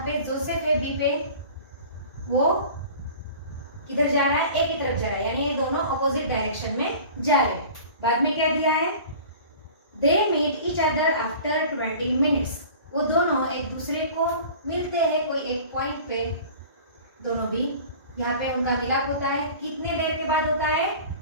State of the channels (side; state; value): both; inverted; correlation -0.42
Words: पे जोसेफ है बी पे, वो किधर जा रहा है, ए की तरफ जा रहा है, यानी ये दोनों अपोजिट डायरेक्शन में जा रहे हैं। बाद में क्या दिया है, they meet each other after 20 minutes. वो दोनों एक दूसरे को मिलते हैं कोई एक पॉइंट पे, दोनों भी यहाँ पे उनका मिलाप होता है। कितने देर के बाद होता है,